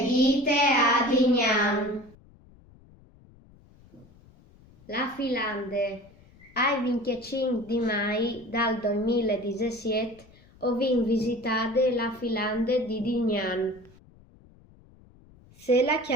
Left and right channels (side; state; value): left; noise; rumble, 26 dB below the sound